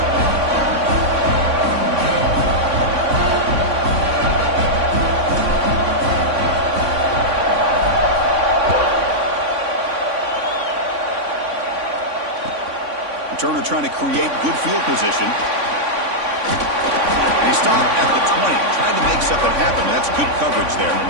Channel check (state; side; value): late; left; 3.5 ms